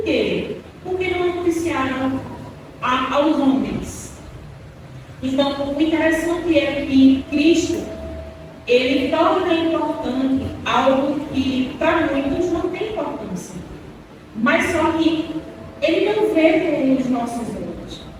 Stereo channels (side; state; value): both; identical; correlation 1.00